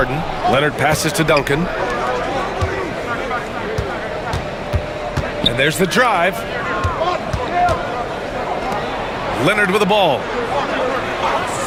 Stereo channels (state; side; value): identical; both; correlation 1.00